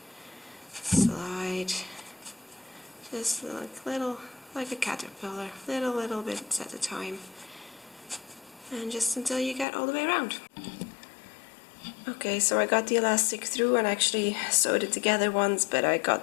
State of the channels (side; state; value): right; drops out; at 9.7 s